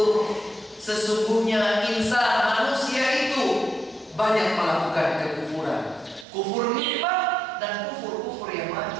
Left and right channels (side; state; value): left; drops out; at 6.2 s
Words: Sesungguhnya insan, manusia itu banyak melakukan kekufuran, kufur nikmat dan kufur-kufur yang